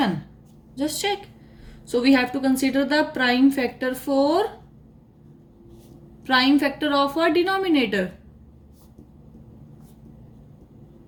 Just check. So we have to consider the prime factor of a denominator.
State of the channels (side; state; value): both; identical; correlation 1.00